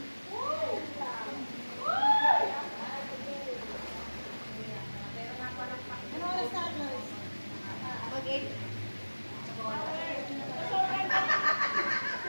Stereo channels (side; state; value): both; inverted; correlation -1.00